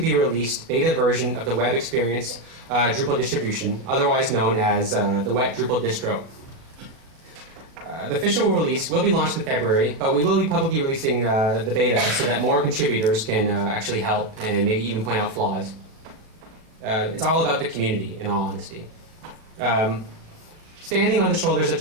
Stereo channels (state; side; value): late; left; 37 ms